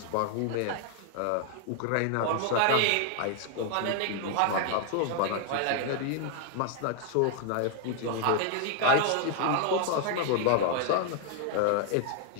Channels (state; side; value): different; both; correlation 0.00